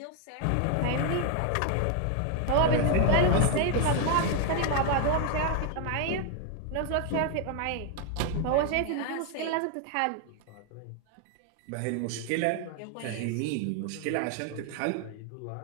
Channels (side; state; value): both; different; correlation 0.00